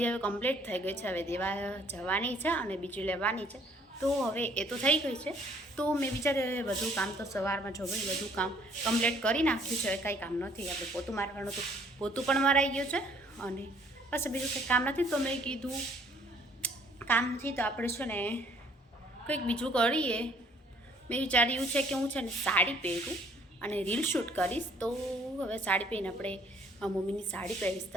હવે કમ્પ્લીટ થઈ ગઈ છે. હવે દેવા જવાની છે અને બીજી લેવાની છે, તો હવે એ તો થઈ ગઈ છે. તો મેં વિચાર્યું બધું કામ તો સવારમાં જો ભાઈ બધું કામ કમ્પ્લીટ કરી નાખ્યું છે. હવે કાંઈ કામ નથી, આપણે પોતું મારવાનું હતું, પોતું પણ મરાઈ ગયું છે અને બસ બીજું કંઈ કામ નથી. તો મેં કીધું કામ નથી તો આપણે છે ને કંઈક બીજું કરીએ. મેં વિચાર્યું છે કે હું છે ને સાડી પહેરું અને રીલ શૂટ કરીશ. તો હવે સાડી પહેરીને આપણે મમ્મીની સાડી પહેરીશ,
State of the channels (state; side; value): normal; both; correlation 0.61